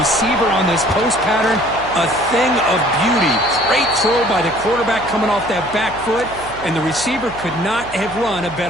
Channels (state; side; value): noise; right; hum, 17 dB below the sound